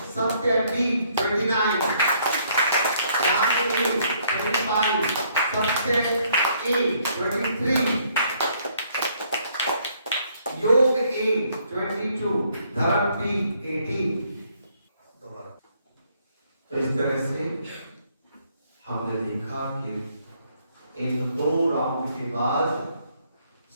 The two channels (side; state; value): both; inverted; correlation -0.67